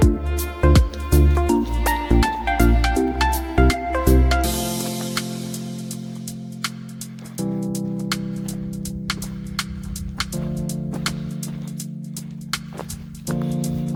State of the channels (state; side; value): identical; both; correlation 1.00